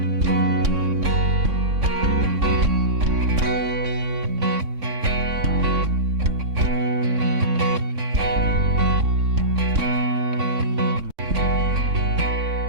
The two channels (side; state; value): left; late; 4.6 ms